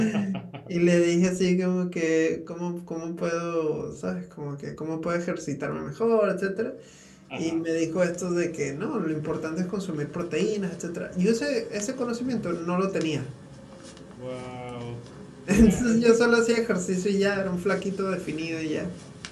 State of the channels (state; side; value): identical; both; correlation 1.00